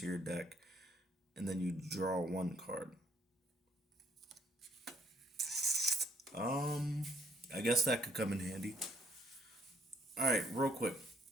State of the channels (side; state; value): both; normal; correlation 0.68